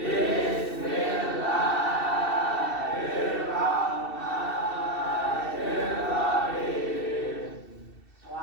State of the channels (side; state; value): right; late; 2.7 ms